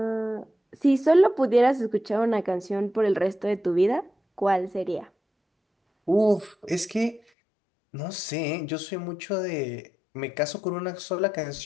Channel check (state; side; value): drops out; right; at 7.2 s